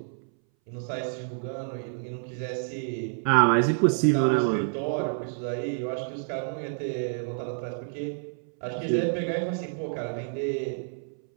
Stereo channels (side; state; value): left; silent; 59 dB below the other